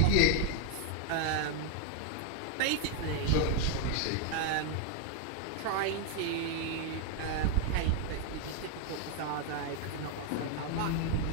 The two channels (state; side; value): different; both; correlation 0.01